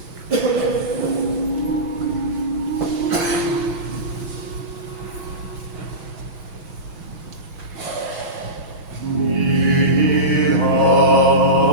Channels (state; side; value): late; left; 7.0 ms